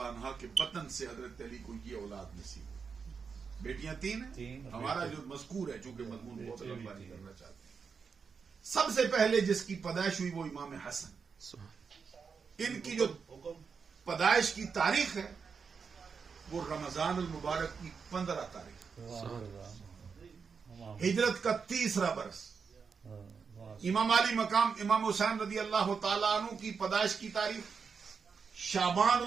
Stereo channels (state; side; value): quieter; left; 5.7 dB